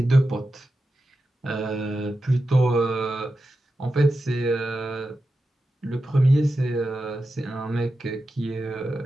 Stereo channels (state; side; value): normal; both; correlation 0.91